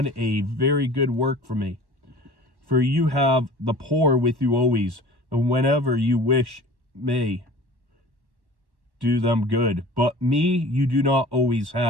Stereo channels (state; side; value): late; left; 1.1 ms